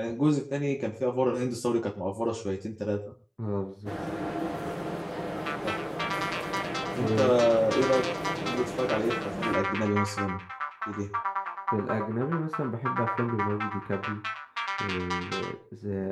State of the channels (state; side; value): identical; both; correlation 1.00